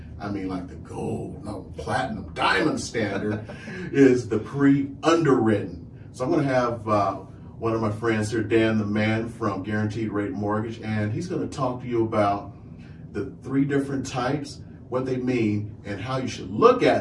I mean, like the gold, no, platinum, diamond standard is the pre-underwritten. So I'm going to have one of my friends here, Dan the Man from Guaranteed Rate Mortgage, and he's going to talk to you about the 3 different types, what they mean, and how you should look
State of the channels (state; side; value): identical; both; correlation 1.00